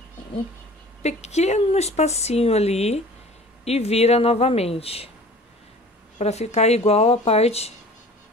um pequeno espacinho ali e vira novamente, para ficar igual a parte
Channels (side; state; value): both; normal; correlation 0.45